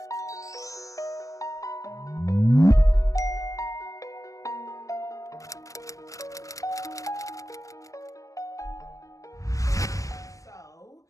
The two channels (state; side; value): late; right; 0.16 ms